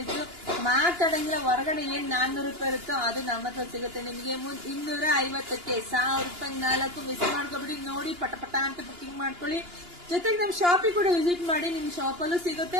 ಮಾತಾಡಂಗಿಲ್ಲ. ಹೊರಗಡೆ ಏನ್ ₹400 ಇರುತ್ತೋ ಅದು ನಮ್ಮ ಹತ್ರ ಸಿಗುತ್ತೆ ನಿಮಗೆ. 250ಕ್ಕೆ ₹1,000 4 ಮಿಸ್ ಮಾಡ್ಕೊಬಿಡಿ. ನೋಡಿ ಪಟ ಪಟ ಅಂತ ಬುಕಿಂಗ್ ಮಾಡ್ಕೊಳ್ಳಿ. ಜೊತೆಗೆ ನಮ್ ಶಾಪಿಗೆ ಕೂಡ ವಿಸಿಟ್ ಮಾಡಿ. ನಿಮ್ ಶಾಪಲ್ಲೂ ಸಿಗುತ್ತೆ,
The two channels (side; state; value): left; late; 2.9 ms